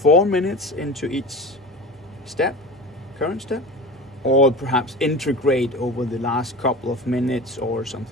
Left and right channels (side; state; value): both; normal; correlation 0.33